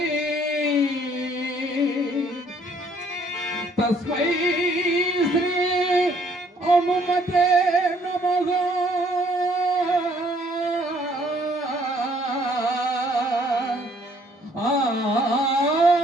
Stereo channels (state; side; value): normal; both; correlation 0.63